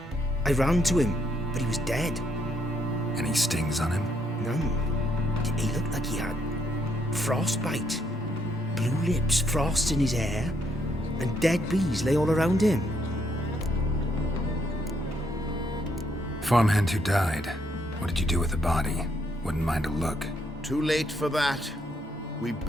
I ran to him, but he was dead. Any stings on him? None. He looked like he had frostbite. Blue lips, frost in his hair, and dead bees lay all around him. Farmhand who died. What did you do with the body? Wouldn't mind a look. Too late for that. We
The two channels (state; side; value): normal; both; correlation 0.73